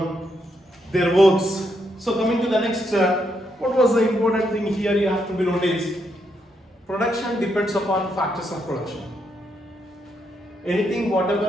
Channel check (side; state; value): both; normal; correlation 0.79